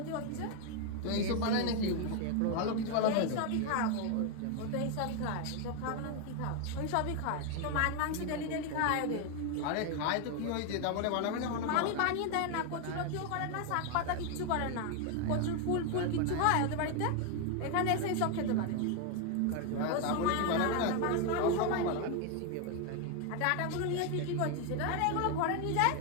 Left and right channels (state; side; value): different; both; correlation 0.01